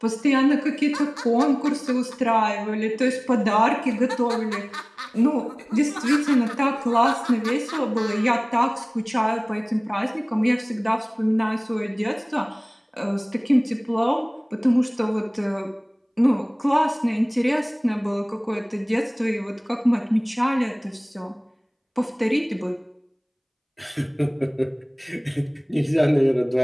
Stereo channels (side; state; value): both; identical; correlation 1.00